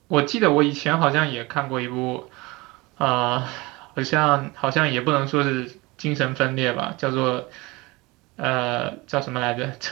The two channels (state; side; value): quieter; left; 23.4 dB